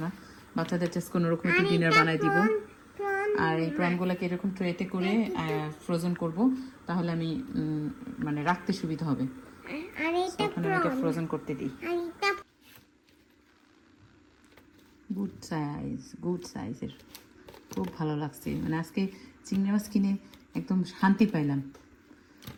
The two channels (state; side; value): identical; both; correlation 1.00